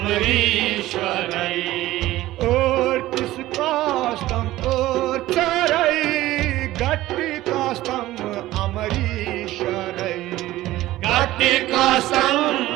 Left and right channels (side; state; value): left; quieter; 16.1 dB